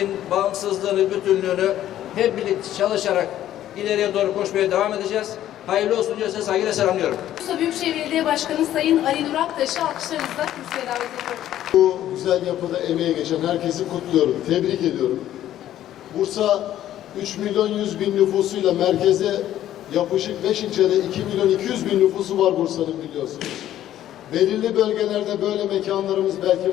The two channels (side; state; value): right; quieter; 12.3 dB